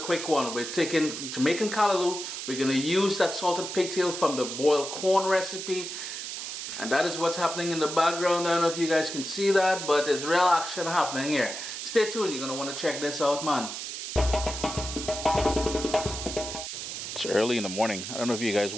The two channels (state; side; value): noise; right; hiss, 7 dB below the sound